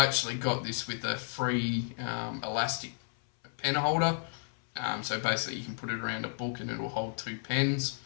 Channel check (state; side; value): silent; right; 56 dB below the other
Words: got this with a free elastic pen holder, so basically you can put it around a book and it'll hold two pens.